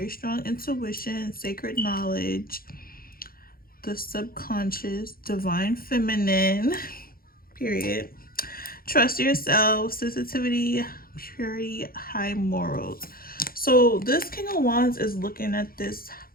strong intuition, sacred knowledge, the subconscious, divine feminine, period. Trust yourself, sensitivity, purity, high morals. So this King of Wands is looking at this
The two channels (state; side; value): late; right; 0.42 ms